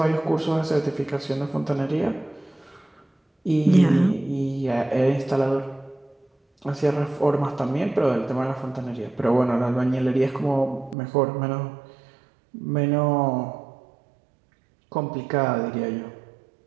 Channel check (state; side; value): drops out; left; at 11.0 s